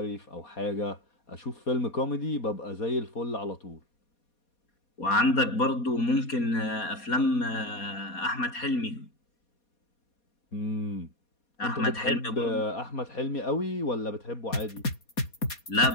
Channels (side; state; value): right; late; 4.2 ms